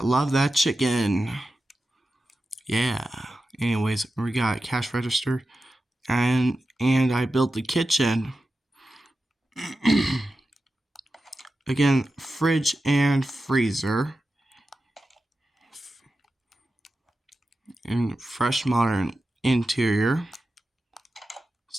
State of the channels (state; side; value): normal; both; correlation 0.92